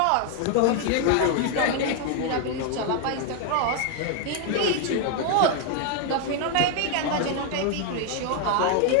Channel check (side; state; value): both; different; correlation 0.01